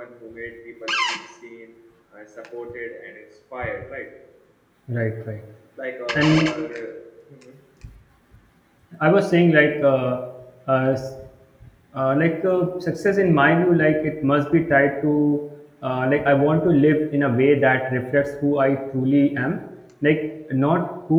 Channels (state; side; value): identical; both; correlation 1.00